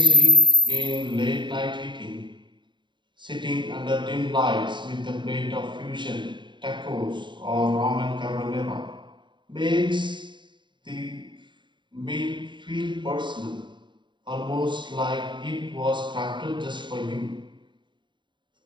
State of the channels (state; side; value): late; left; 0.23 ms